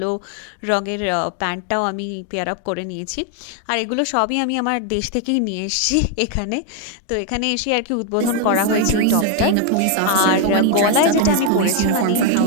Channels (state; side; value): different; both; correlation 0.01